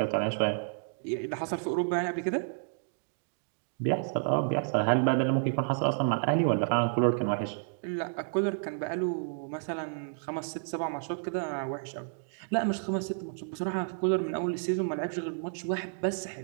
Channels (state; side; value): silent; left; digital silence